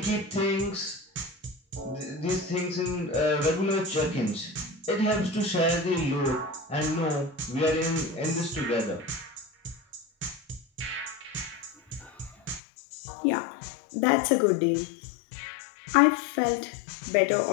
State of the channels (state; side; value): drops out; right; at 12.6 s